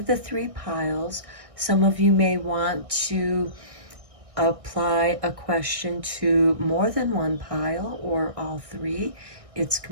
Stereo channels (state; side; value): late; left; 1.6 ms